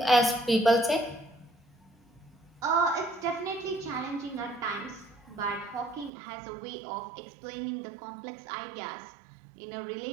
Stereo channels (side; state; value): left; drops out; at 6.1 s